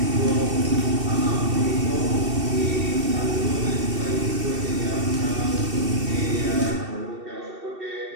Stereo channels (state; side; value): late; left; 2.7 ms